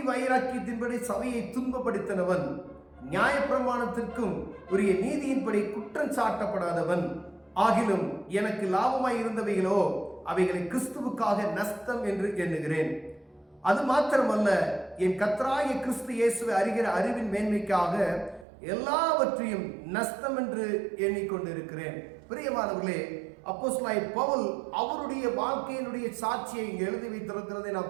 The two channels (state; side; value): drops out; left; at 18.4 s